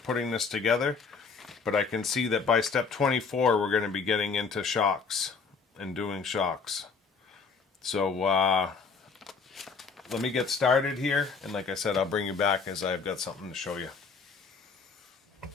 putting this together. But I can see that by step 24, we're going to be getting into shocks and doing shocks. So let me get started here, and like I said, I'll bring you back as I've got something to show you.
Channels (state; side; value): quieter; right; 5.2 dB